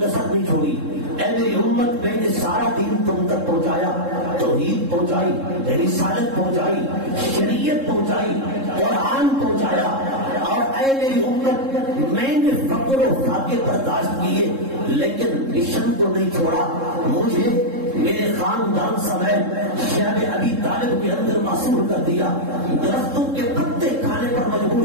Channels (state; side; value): late; left; 3.7 ms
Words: نہیں چھوڑی، اے میری امت میں نے سارا دین تم تک پہنچایا، توحید پہنچائی، رسالت پہنچائی، شریعت پہنچائی، قرآن پہنچایا، اور اے میری امت میں نے فقر و فاقے برداشت کیے لیکن مشن کو نہیں چھوڑا۔ مجھے میرے خاندان سمیت شیب ابی طالب کے اندر معصور کر دیا، درختوں کے پتے کھانے پر